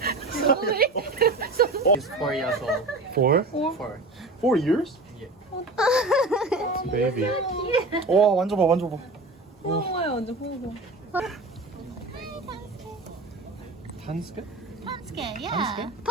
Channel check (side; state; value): left; quieter; 3.0 dB